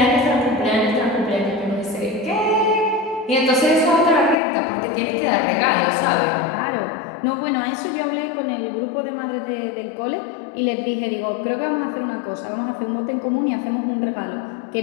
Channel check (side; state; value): right; drops out; at 4.4 s